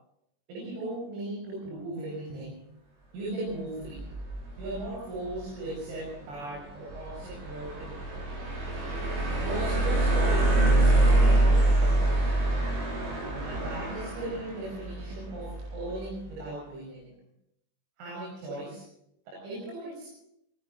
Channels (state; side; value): late; left; 21 ms